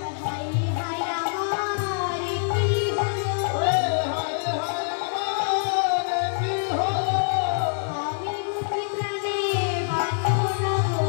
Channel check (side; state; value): right; silent; digital silence